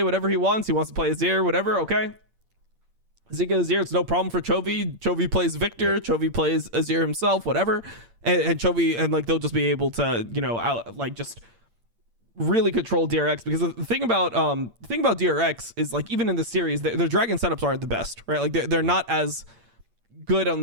whatever he wants. He wants to play Azir, whatever. Okay. Zeka Azir, it's no problem for Chovy. Chovy plays Victor. Chovy plays Azir himself, whatever. And Chovy, and like they'll just be able to, you know, just really control DRX, because the thing about DRX is like, even in the series, their dragon setups aren't the best, right? Like they're not as good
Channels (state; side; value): late; left; 8.7 ms